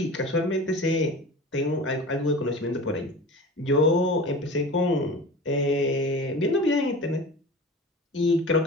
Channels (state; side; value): normal; both; correlation 0.35